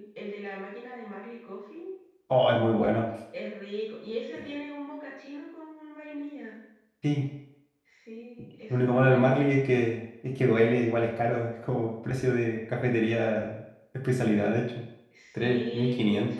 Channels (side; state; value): both; identical; correlation 1.00